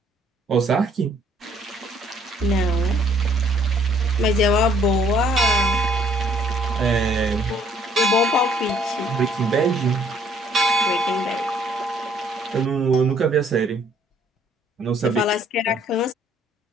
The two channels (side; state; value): both; normal; correlation 0.62